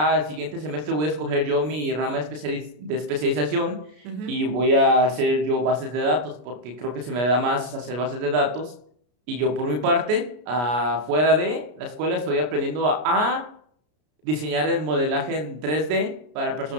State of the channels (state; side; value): late; left; 33 ms